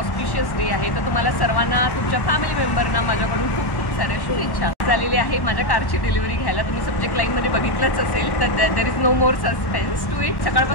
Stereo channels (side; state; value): right; late; 1.1 ms